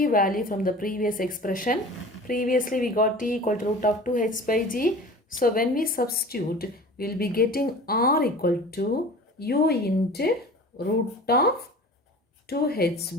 value from the previous expression. Previously, we got t equal to root of 2h by g. So when we substitute, we will be getting r equal to u into root of 2h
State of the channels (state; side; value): normal; both; correlation 0.40